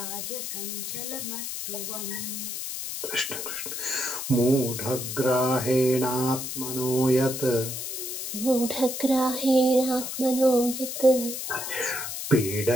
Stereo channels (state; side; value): noise; left; hiss, 5 dB below the sound